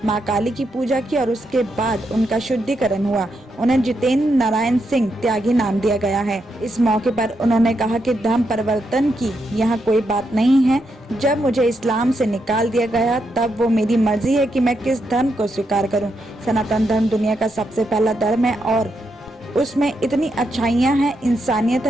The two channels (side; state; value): both; normal; correlation 0.82